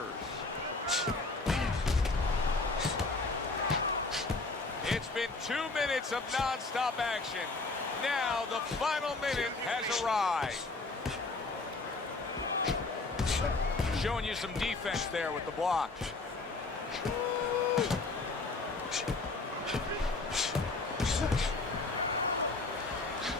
It's been 2 minutes of non-stop action. Now the final minute has arrived. Showing you some defense there with the block.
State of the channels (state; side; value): quieter; right; 3.5 dB